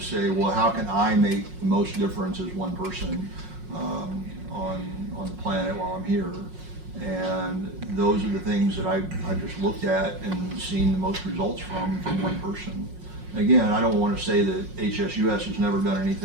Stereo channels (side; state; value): left; late; 5.5 ms